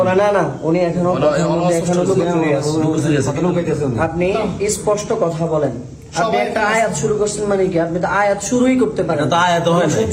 না, উনি এখনো কথার মধ্যে এখনো লুকোচুরি আছে। আপনি স্পষ্ট কথা বলেন। আপনি একটা আয়াত শুরু করছেন মানে কি? আপনি তো আয়াত শুরুই করতে পারেন। এটা তো আয়াত হয় না।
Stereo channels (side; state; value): both; identical; correlation 1.00